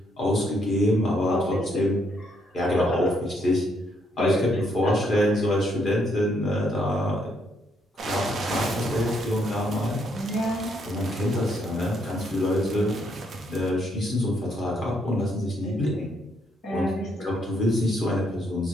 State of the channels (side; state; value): both; normal; correlation 0.73